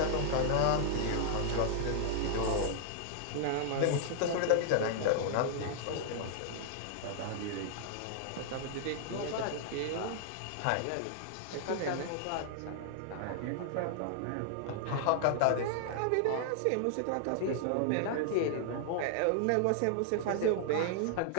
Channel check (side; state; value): both; different; correlation -0.01